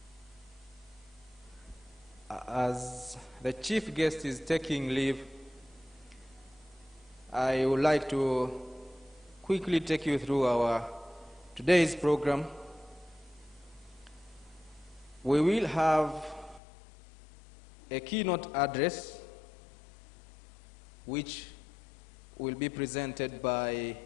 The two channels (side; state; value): right; drops out; at 16.6 s